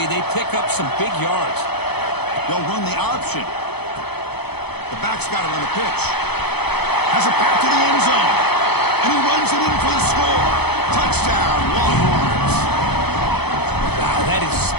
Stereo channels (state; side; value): late; right; 0.98 ms